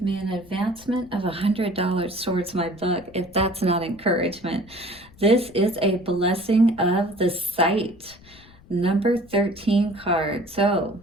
me an advancement of $100 towards my book, if that's not encouragement. This is a blessing of the sight, number 13 card. So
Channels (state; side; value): noise; left; rumble, 24 dB below the sound